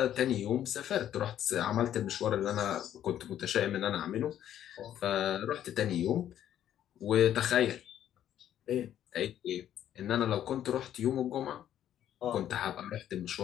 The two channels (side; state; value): right; quieter; 11.0 dB